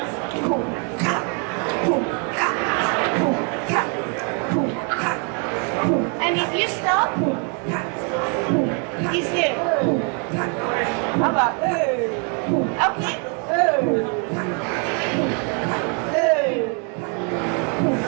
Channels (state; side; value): quieter; left; 37.7 dB